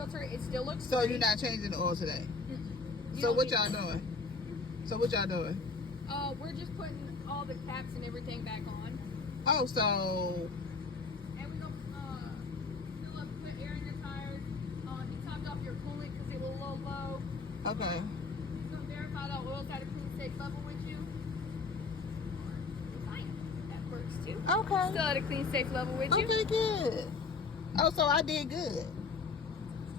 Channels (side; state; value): right; quieter; 4.3 dB